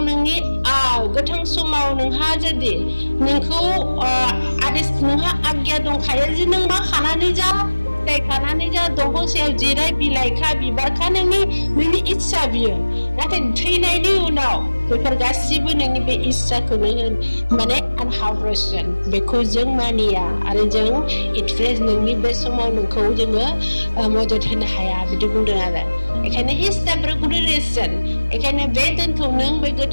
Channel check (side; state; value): both; inverted; correlation -1.00